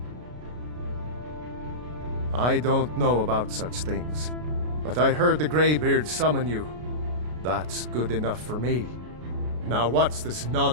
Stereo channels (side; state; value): left; late; 33 ms